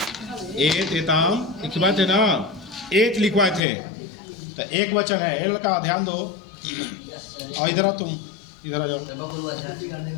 एत एताम लिखवाए थे ना, एत लिखवाए थे, तो एक वचन है, ए लड़का ध्यान दो, और इधर आओ, तुम इधर आ जाओ।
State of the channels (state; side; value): drops out; right; at 3.6 s